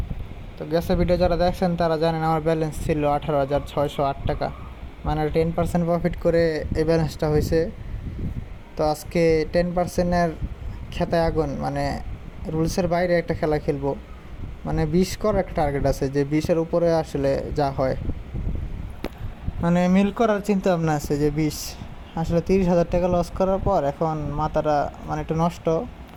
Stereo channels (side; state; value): both; identical; correlation 1.00